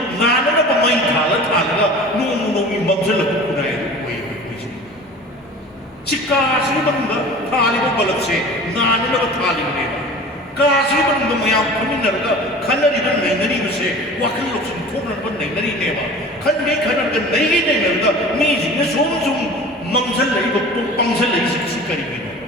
뭐 많이 달라가 너무 멈춰서 그래 Jika sini benda, thali ko balap se, nani na thali ne ba. Kasi manungda mayam phaminarga khanariba nainaribase wakhal loksin thoknarba nainarineeba khange khanarga nainarga misingna somsum mangzal laiba pangzal laisi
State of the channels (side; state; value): both; normal; correlation 0.40